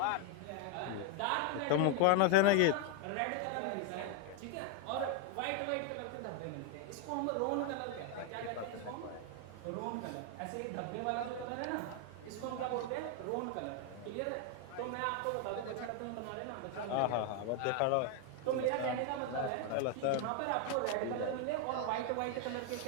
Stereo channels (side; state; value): both; different; correlation 0.01